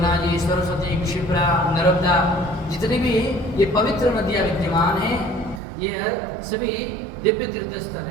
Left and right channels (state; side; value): drops out; left; at 5.6 s